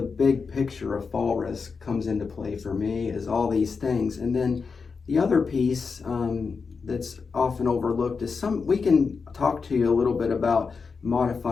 big picture of fall risk comes into play for me, is all these things. And then the other piece that's often overlooked is we can talk to you a little bit about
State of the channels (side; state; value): right; quieter; 5.1 dB